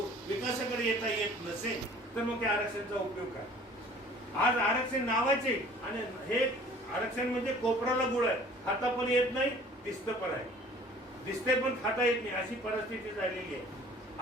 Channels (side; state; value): both; normal; correlation 0.50